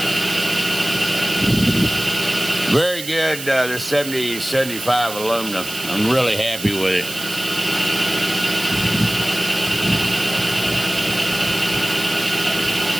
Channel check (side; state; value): right; noise; hiss, 10 dB below the sound